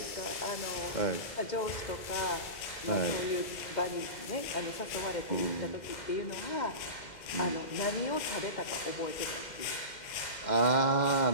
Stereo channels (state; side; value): late; right; 2.1 ms